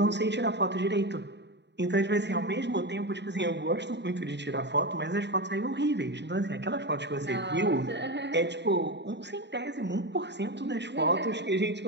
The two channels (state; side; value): late; left; 0.51 ms